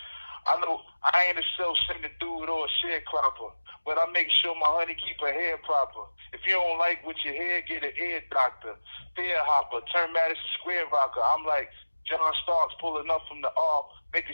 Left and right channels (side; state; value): both; inverted; correlation -1.00